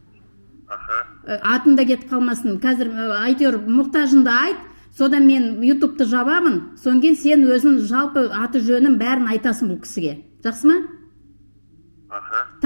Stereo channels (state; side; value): inverted; both; correlation -1.00